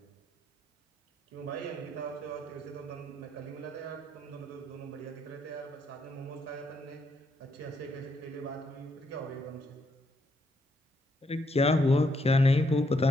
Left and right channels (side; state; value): both; normal; correlation 0.76